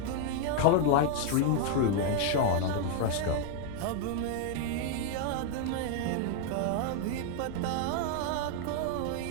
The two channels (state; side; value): different; both; correlation 0.00